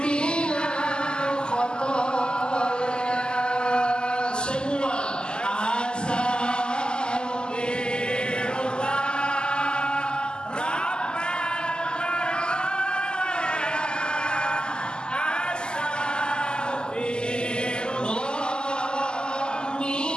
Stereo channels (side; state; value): right; late; 0.047 ms